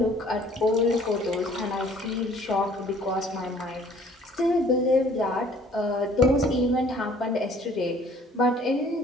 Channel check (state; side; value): normal; both; correlation 0.55